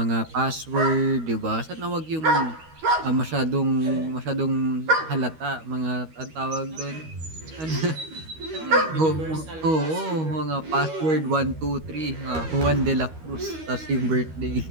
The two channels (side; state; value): left; late; 13 ms